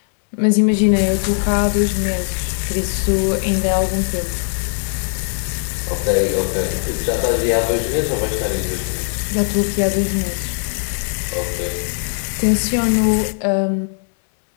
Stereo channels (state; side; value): silent; right; digital silence